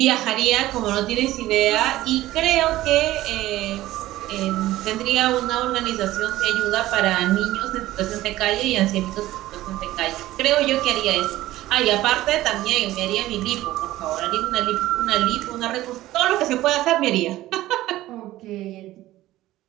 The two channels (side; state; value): left; quieter; 15.8 dB